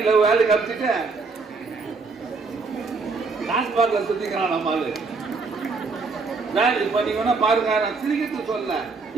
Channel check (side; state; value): left; quieter; 4.2 dB